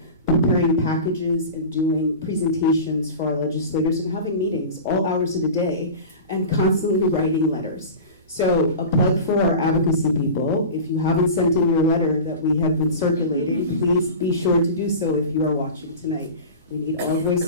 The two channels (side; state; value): both; inverted; correlation -0.33